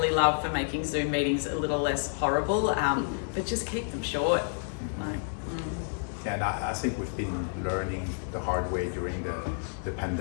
love for making Zoom meetings a little less horrible, but just keep them short. Yeah, and I think we've been learning the hard way during the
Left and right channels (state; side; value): silent; right; digital silence